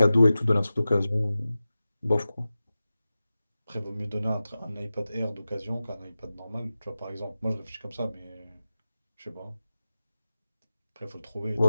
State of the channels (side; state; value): both; inverted; correlation -0.95